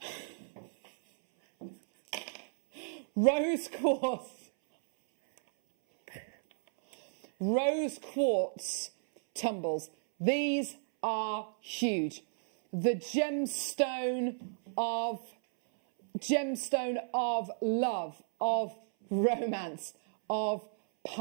Rose quartz. Rose quartz tumbles. These are huge. The gemstone of love, of romance, of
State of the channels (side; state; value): left; silent; 56 dB below the other